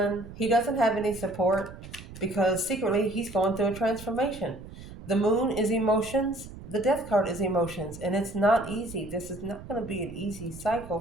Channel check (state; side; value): noise; right; rumble, 15 dB below the sound